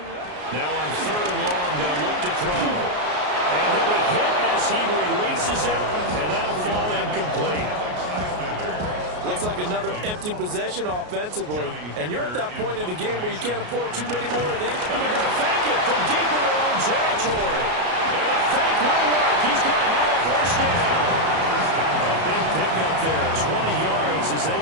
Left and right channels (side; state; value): left; late; 33 ms